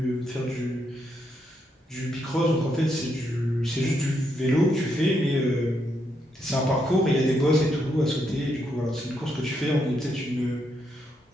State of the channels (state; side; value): normal; both; correlation 0.79